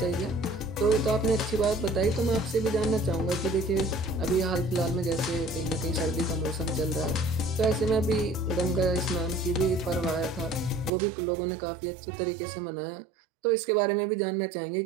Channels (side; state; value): left; drops out; at 10.9 s